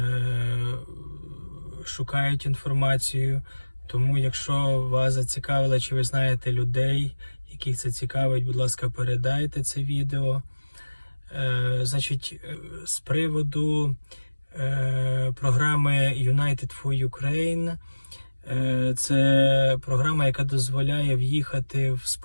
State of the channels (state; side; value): inverted; both; correlation -1.00